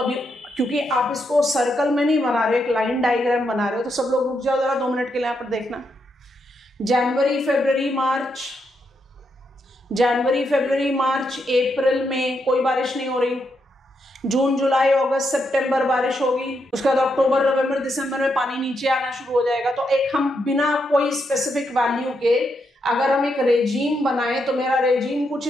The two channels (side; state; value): both; normal; correlation 0.81